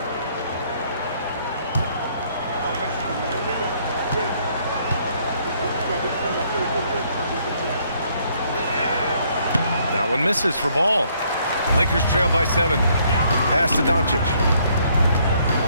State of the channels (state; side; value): inverted; both; correlation -0.67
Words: That one misses for Ball. Lakers trail by 7. Pass to Doncic.